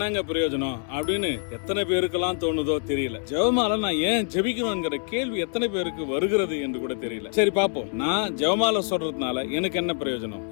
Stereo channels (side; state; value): right; silent; 56 dB below the other